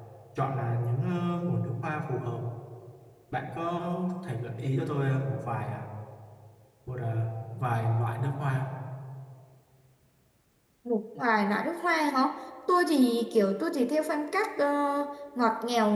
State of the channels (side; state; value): both; identical; correlation 1.00